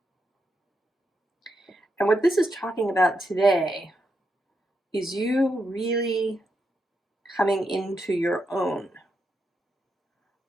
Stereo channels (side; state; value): both; normal; correlation 0.83